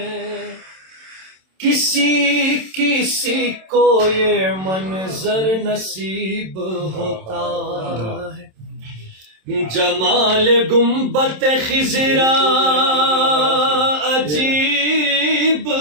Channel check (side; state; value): left; late; 27 ms